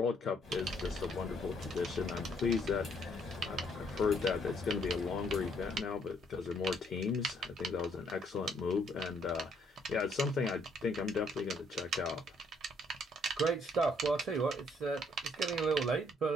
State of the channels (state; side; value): normal; both; correlation 0.68